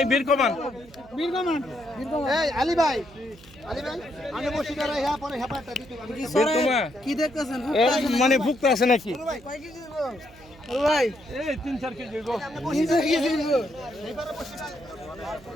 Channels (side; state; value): right; noise; hum, 23 dB below the sound